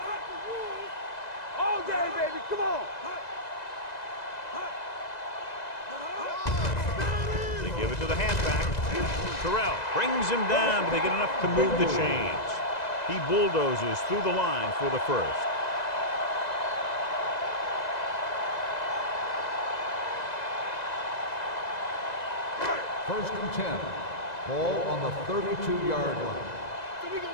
cut the rules all day, baby. Come on. Give it to the halfback. Terrell brings him down, but they get enough to move the chains. He bulldozes through the line for the first. First and 10. Ball on the 32-yard line. So we gonna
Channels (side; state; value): right; late; 2.0 ms